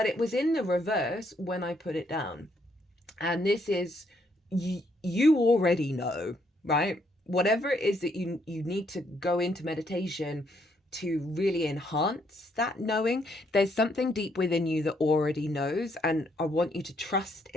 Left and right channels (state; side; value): normal; both; correlation 0.72